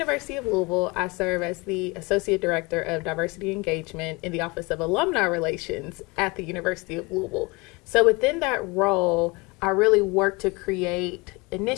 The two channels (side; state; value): right; quieter; 26.0 dB